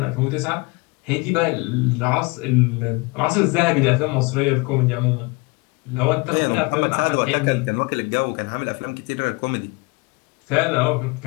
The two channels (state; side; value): quieter; right; 27.0 dB